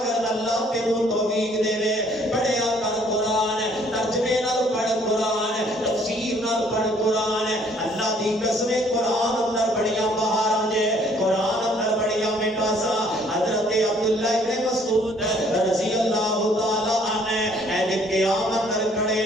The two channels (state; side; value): normal; both; correlation 0.61